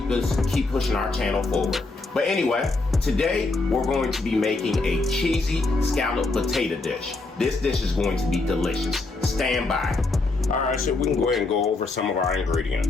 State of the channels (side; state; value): right; quieter; 3.4 dB